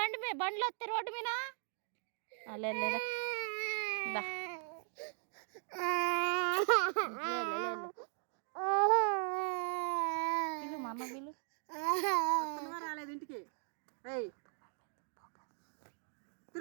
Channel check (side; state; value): left; silent; 52 dB below the other